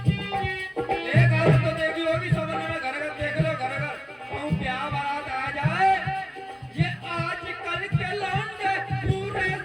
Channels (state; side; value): identical; both; correlation 1.00